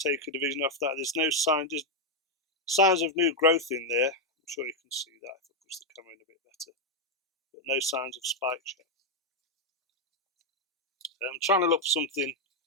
a division off that. There's no signs of new growth in there. I'm sure you can see that if I push the camera in a bit better. But no signs of spikes yet. I'm trying to look for something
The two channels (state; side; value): normal; both; correlation 0.01